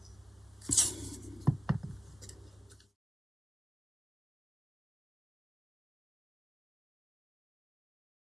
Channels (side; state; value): both; normal; correlation 0.89